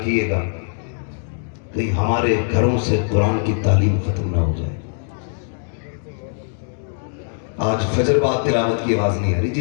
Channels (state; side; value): silent; right; digital silence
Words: कहीं हमारे घरों से कुरान की तालीम खत्म ना हो जाए। आज फजर बाद तिलावत की आवाज नहीं आ रही,